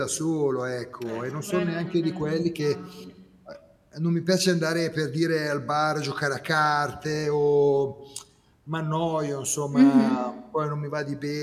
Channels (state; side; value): identical; both; correlation 1.00